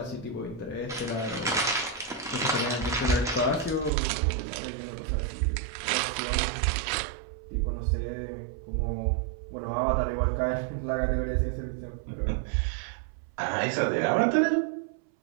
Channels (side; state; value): left; drops out; at 3.9 s